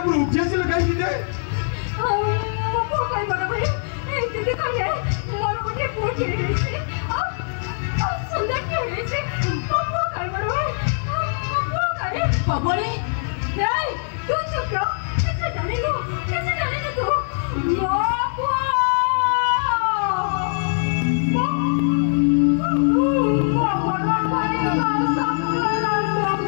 উঠিয়েছিল কাইকি যে মো কই বড় ভাই এই দিদি কইলে মোর উঠে পড়ে গেছে সুন্দর কি হয়েছে মো কই বড় ভাই মো কই বাবরে এই তুই চুপ রহ कैसे जाने लो तू बाबू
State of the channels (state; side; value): silent; right; digital silence